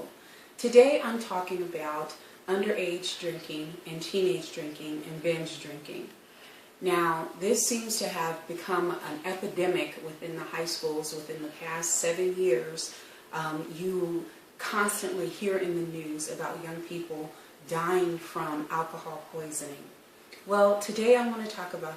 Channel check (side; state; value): both; identical; correlation 1.00